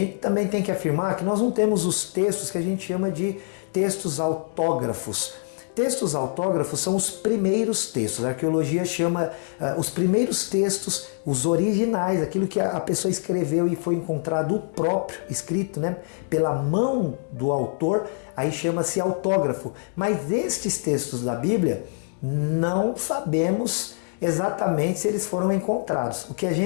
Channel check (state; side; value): silent; right; 62 dB below the other